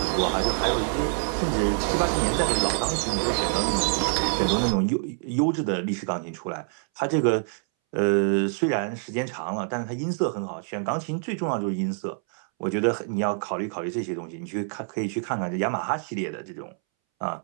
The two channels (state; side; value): silent; left; 61 dB below the other